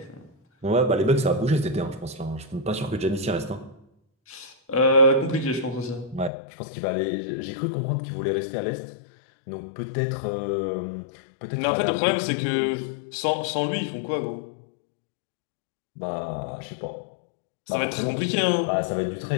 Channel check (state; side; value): drops out; right; at 6.3 s